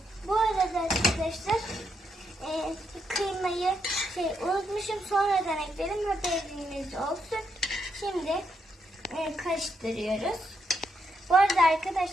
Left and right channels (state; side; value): normal; both; correlation 0.79